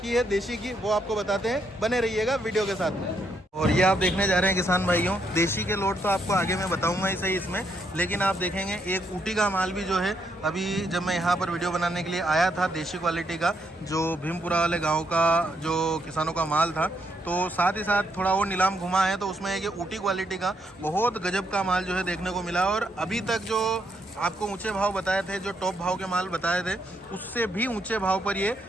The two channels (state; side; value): normal; both; correlation 0.76